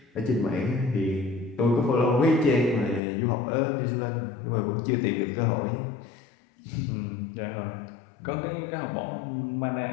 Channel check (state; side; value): drops out; right; at 3.0 s